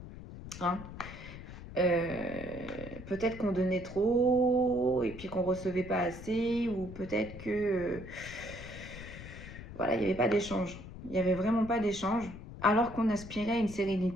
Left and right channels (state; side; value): noise; left; rumble, 12 dB below the sound